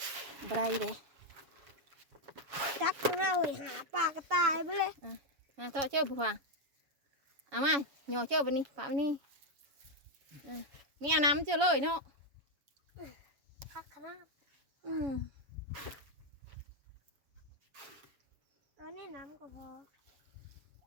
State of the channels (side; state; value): left; late; 7.1 ms